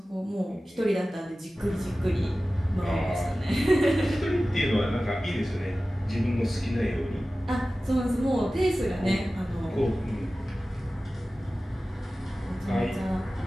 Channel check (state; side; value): normal; both; correlation 0.96